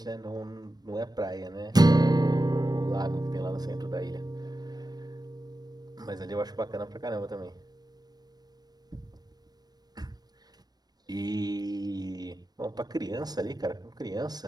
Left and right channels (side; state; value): left; late; 0.19 ms